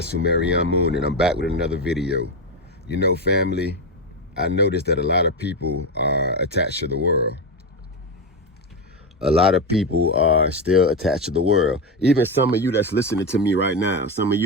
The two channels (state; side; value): normal; both; correlation 0.12